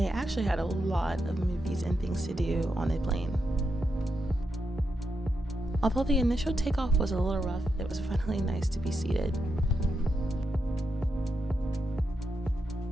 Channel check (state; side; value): normal; both; correlation 0.84